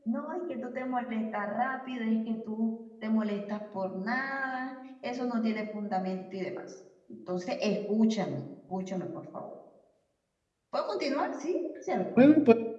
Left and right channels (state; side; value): identical; both; correlation 1.00